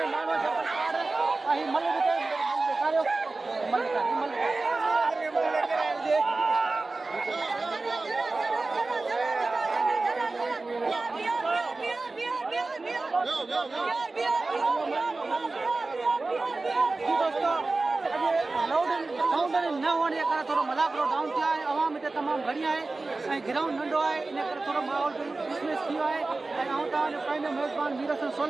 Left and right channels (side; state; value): left; quieter; 3.4 dB